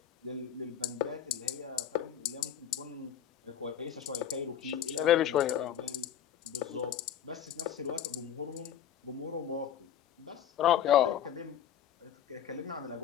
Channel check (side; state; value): right; quieter; 10.0 dB